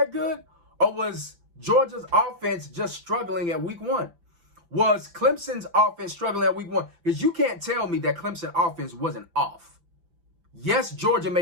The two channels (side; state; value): left; late; 5.8 ms